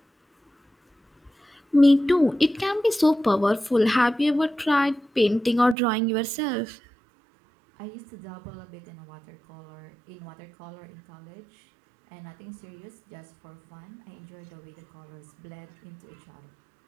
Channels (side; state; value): left; drops out; at 5.8 s